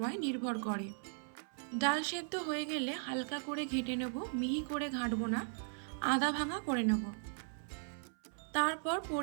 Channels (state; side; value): silent; left; 53 dB below the other